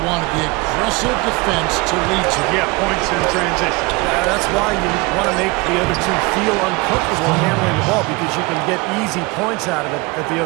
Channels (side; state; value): left; quieter; 24.8 dB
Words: wanted, the aggressive defense to lead to. Yeah, points in transition. Yeah, that's why you want to make the other team feel uncomfortable handling the ball, because you can get easy points out of it at the